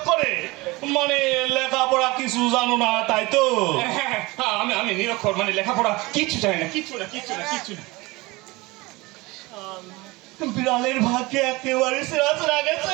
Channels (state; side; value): quieter; left; 22.7 dB